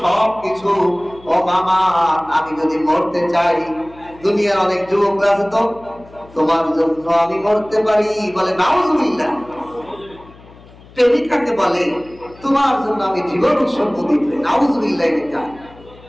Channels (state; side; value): noise; left; hum, 23 dB below the sound